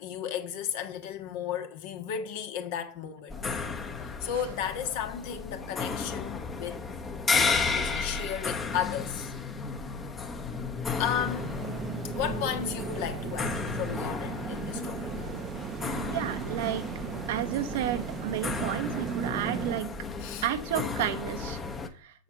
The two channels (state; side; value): normal; both; correlation 0.31